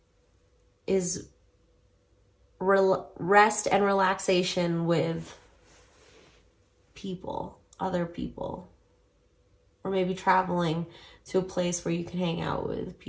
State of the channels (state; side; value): identical; both; correlation 1.00